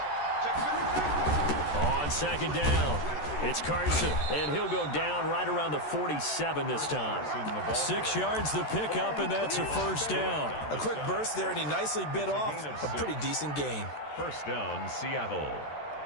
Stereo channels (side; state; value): right; late; 13 ms